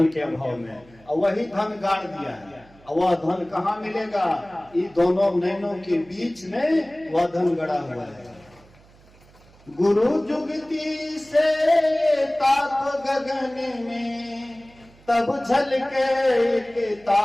के अभाव में, और वही धन गाड़ दिया है। और वह धन कहाँ मिलेगा? ये दोनों नैनों के बीच में वह धन गड़ा हुआ है। गुरु जुगती से ताप गगन में, तब झलके एक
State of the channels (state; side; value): noise; right; hum, 27 dB below the sound